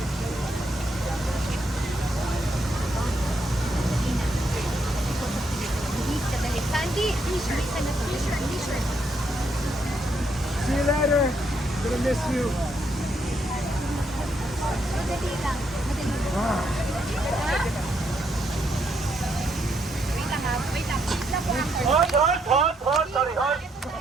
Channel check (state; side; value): normal; both; correlation 0.76